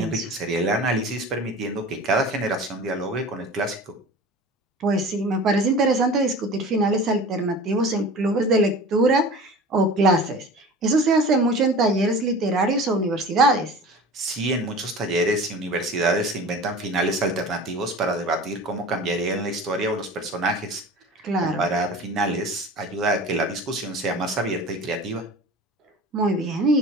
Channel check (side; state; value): both; normal; correlation 0.38